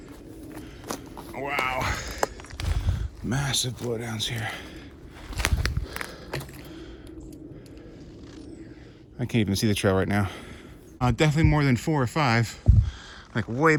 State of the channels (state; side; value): identical; both; correlation 1.00